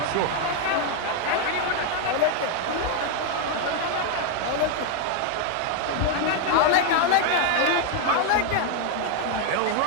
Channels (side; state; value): both; different; correlation 0.00